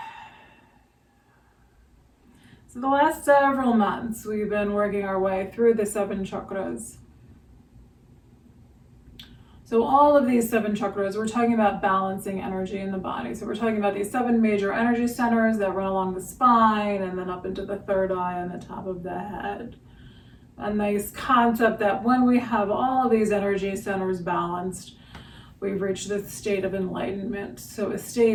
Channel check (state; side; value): identical; both; correlation 1.00